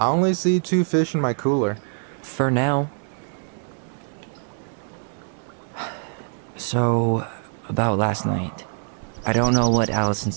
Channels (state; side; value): silent; left; 63 dB below the other